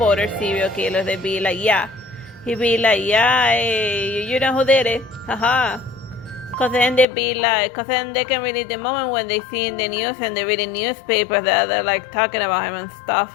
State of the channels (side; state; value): right; drops out; at 7.1 s